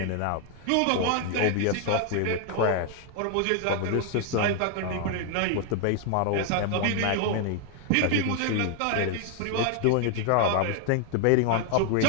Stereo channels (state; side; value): different; both; correlation 0.01